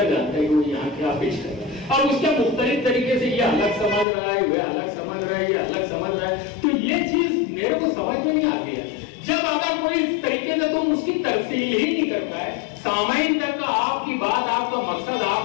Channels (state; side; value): drops out; right; at 4.0 s